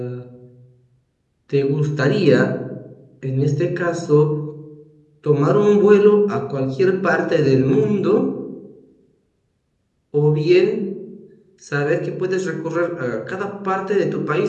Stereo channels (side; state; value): both; identical; correlation 1.00